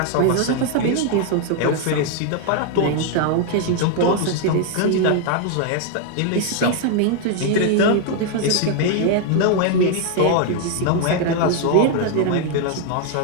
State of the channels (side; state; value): both; different; correlation 0.00